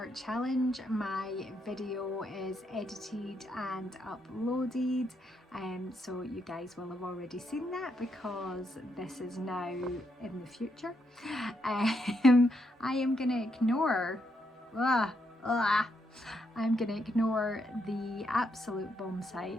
challenge. My video is edited and uploaded, so you guys will have already seen that because this is now in the future. I am gonna ignore I'm gonna ignore the absolute bomb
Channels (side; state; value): both; normal; correlation 0.78